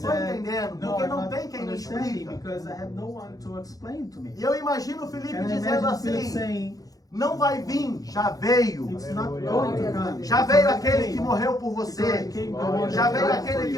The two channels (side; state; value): right; late; 0.18 ms